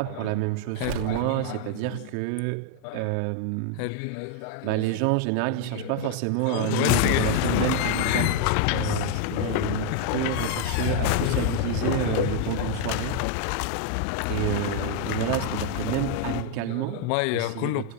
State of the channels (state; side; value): different; both; correlation 0.00